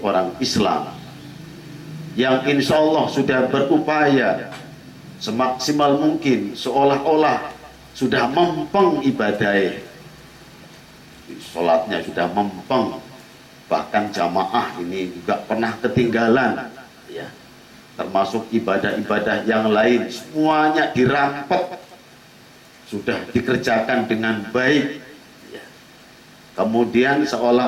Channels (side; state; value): both; identical; correlation 1.00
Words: orang Islam yang insya Allah sudah berupaya semaksimal mungkin seolah-olah sudah mempeng ibadah, sholatnya sudah mempeng, bahkan jamaah ini juga pernah ketinggalan ya, termasuk ibadah-ibadah yang lain semuanya dirampok, sudah dikerjakan dengan baik ya. Kemudian